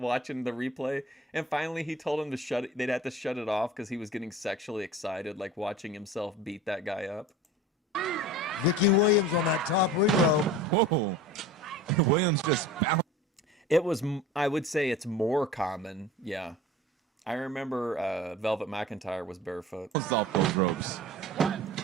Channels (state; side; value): normal; both; correlation 0.39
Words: the replay. And finally he told him they'd have to shut it off because he was getting sexually excited, like watching himself beat that guy up. Vicky Williams on that top ring rope. Whoa. Williams just bounced. It was, I would say it's more common. Yeah. I remember Velvet McIntyre was barefoot. Off those ropes.